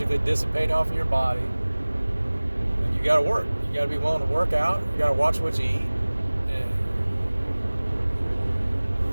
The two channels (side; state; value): both; inverted; correlation -1.00